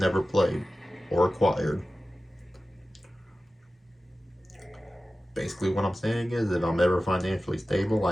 played or acquired. Basically, what I'm saying is, if I'm ever financially stable,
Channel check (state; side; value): normal; both; correlation 0.95